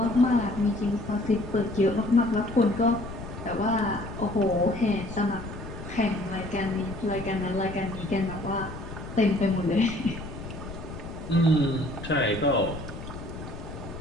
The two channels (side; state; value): left; noise; rumble, 10 dB below the sound